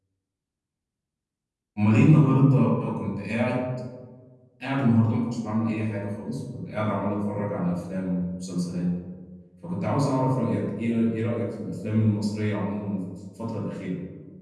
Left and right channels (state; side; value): identical; both; correlation 1.00